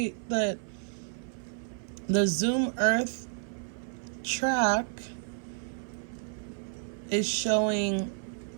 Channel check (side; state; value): left; silent; 55 dB below the other